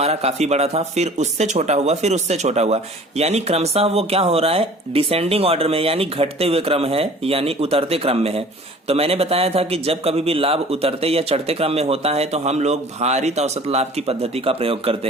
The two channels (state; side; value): normal; both; correlation 0.47